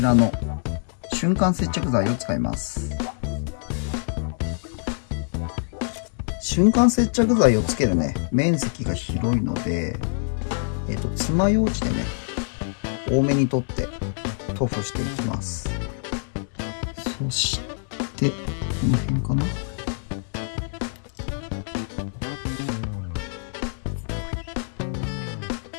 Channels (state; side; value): silent; right; digital silence